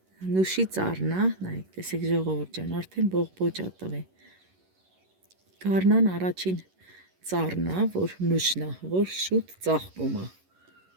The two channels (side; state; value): left; late; 11 ms